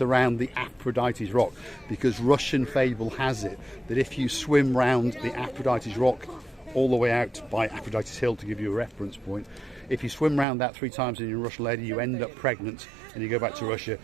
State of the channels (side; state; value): left; drops out; at 10.5 s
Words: around the Aphrodite's Rock, because Russian fable has it that if you swim round the Aphrodite's Rock all the way out by Aphrodite's Hill, to give you a reference point, if you swim round that 3 times and you're a Russian lady, you end up pregnant and you go back to Russia